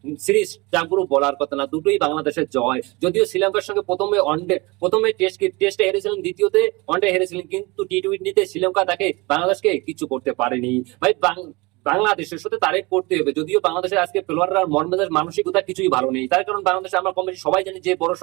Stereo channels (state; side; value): quieter; left; 24.8 dB